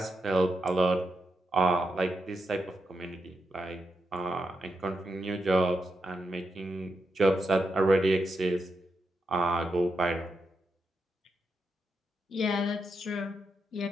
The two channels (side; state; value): both; normal; correlation 0.85